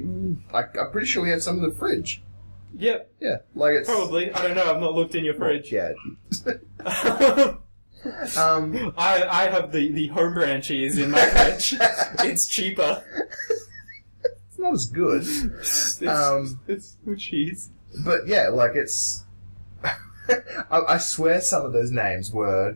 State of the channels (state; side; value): inverted; both; correlation -1.00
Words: pretty sure we have some in the fridge. Yep. Yeah. It's... Probably. I don't know. I've not looked in your fridge. Yeah. I have the home brand cheese in my fridge. It's cheaper. It's not as good. It's good cheese. But, yeah, it's... I swear some of those names were